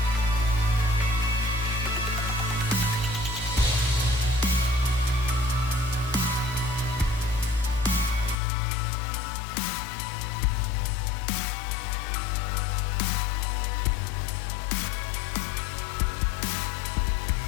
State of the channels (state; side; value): drops out; right; at 8.3 s